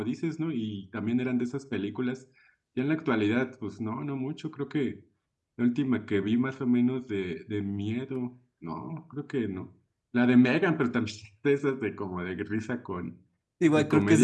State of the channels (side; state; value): both; identical; correlation 1.00